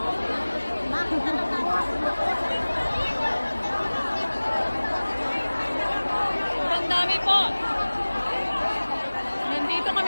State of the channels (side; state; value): both; inverted; correlation -1.00